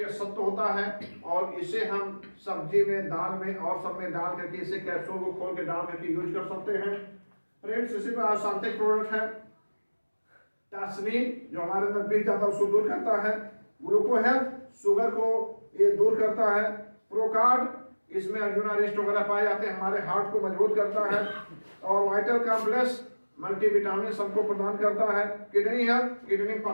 सत्व होता है और इसे हम सब्जी में, दाल में और सब में डाल करके इसे कैप्सूल को खोल के डाल करके यूज कर सकते हैं। फ्रेंड्स, इसी पर आसांतिक प्रोडक्ट है टास्मिन, जो हमारे अंदर पीस जाता है उसको दूर करता है। ग्लूको हेल्थ, शुगर को ये दूर करता है। प्रोकार्ड, इसमें अर्जुना रेस्ट वगैरह पाए जाते हैं, हमारे हार्ट को मजबूत करता है। और वाइटल कॉम्प्लेक्स मल्टीविटामिन सबको प्रदान करता है। किडनी हेल्थ, किडनी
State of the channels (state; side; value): inverted; both; correlation -1.00